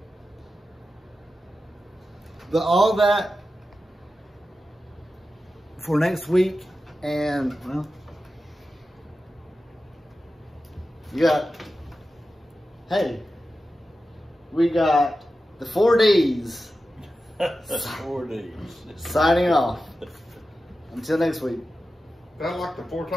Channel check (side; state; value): both; normal; correlation 0.92